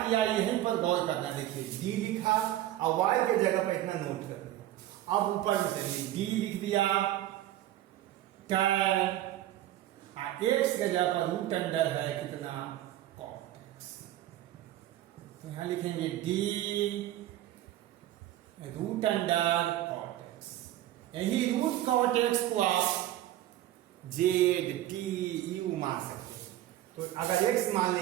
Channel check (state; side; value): quieter; left; 13.8 dB